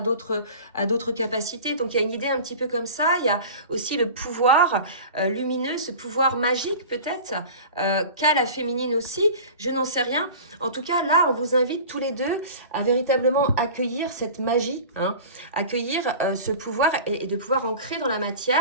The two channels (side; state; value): both; inverted; correlation -0.37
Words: capacités. Donc il y a une idée un petit peu comme ça. Il y a aussi le pouvoir lumineux, ce pouvoir magique peut-être, qu'a la féminine aussi. Je n'en sais rien. En tout cas, là, on vous invite tous les deux à véritablement accueillir cette magie, hein, accueillir ce pouvoir et de pouvoir ancrer dans la